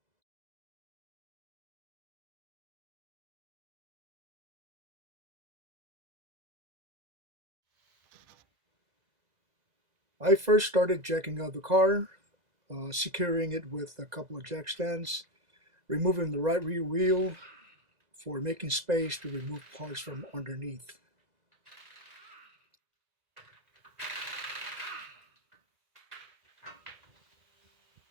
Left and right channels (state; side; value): late; left; 2.0 ms